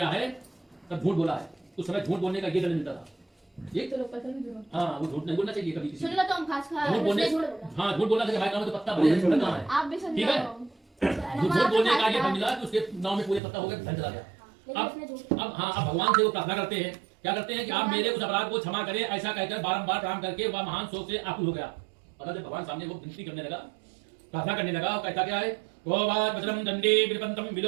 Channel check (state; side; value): drops out; left; at 13.4 s